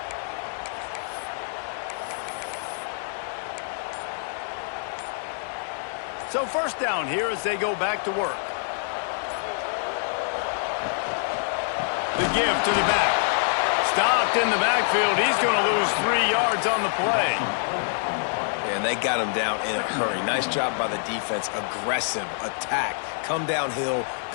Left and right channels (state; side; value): silent; right; 61 dB below the other